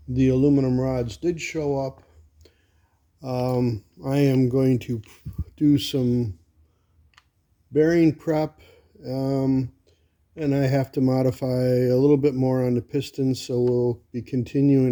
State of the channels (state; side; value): identical; both; correlation 1.00